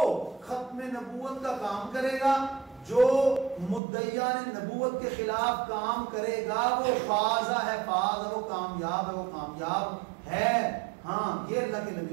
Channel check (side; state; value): left; drops out; at 3.8 s